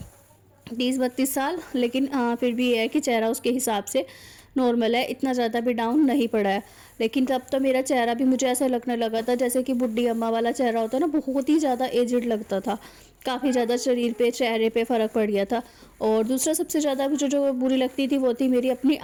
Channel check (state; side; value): identical; both; correlation 1.00